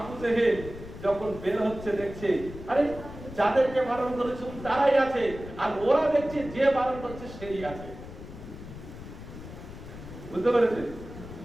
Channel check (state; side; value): noise; left; rumble, 13 dB below the sound